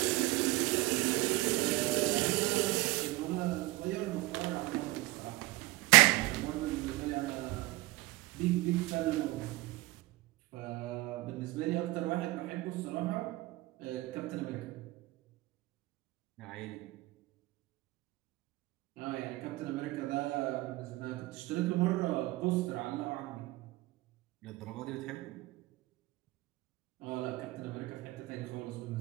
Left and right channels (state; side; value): quieter; left; 20.1 dB